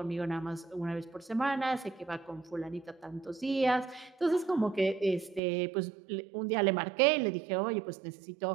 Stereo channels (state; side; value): drops out; left; at 5.4 s